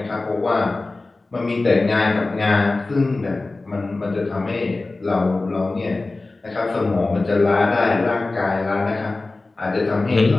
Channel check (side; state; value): right; quieter; 3.3 dB